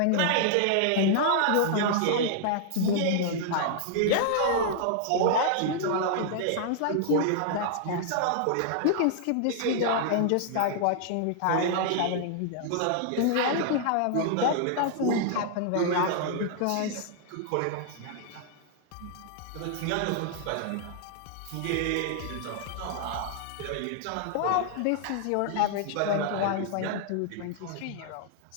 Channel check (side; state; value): both; different; correlation -0.01